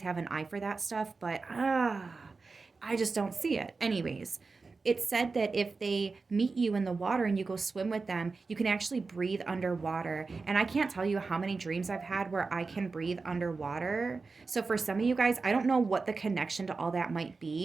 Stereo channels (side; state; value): left; quieter; 4.2 dB